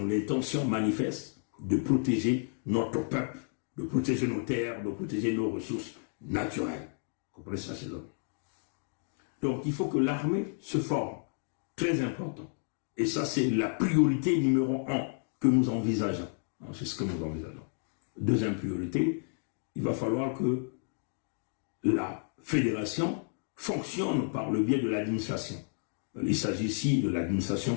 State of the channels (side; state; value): right; silent; 57 dB below the other